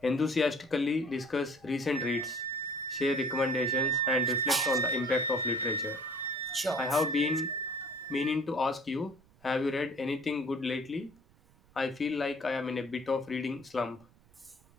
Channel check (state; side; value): noise; right; rumble, 29 dB below the sound